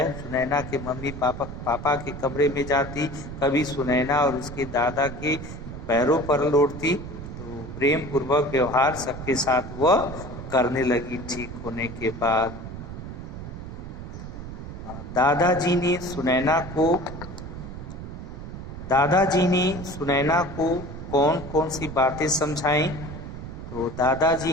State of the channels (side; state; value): right; noise; rumble, 10 dB below the sound